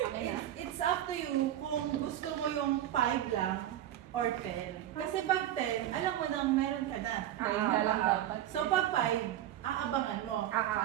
It's up to you kung gusto mo yung 5 lang or 10. Kasi pag 10, alam mo nang meron ka na. So pag 5, aabangan mo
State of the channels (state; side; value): quieter; left; 12.1 dB